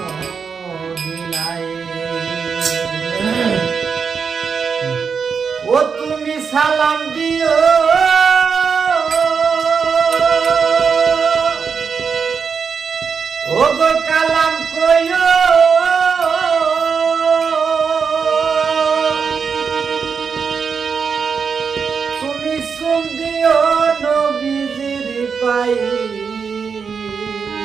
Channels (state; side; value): quieter; left; 5.9 dB